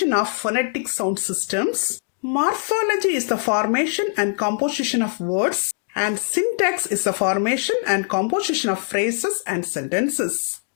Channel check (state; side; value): silent; right; digital silence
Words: of phonetic sound systems. Morphology is the formation and composition of words. And syntax is the formation and composition of phrases and sentences.